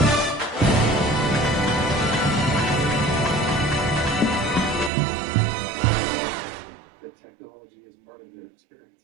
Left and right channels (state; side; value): drops out; left; at 4.9 s